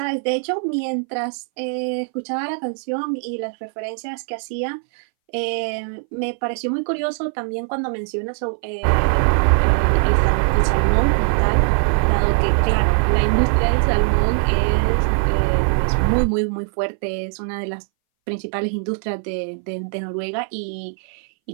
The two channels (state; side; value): silent; left; 62 dB below the other